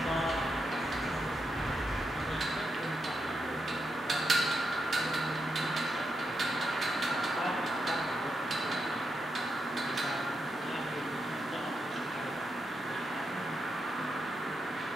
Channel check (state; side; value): normal; both; correlation 0.84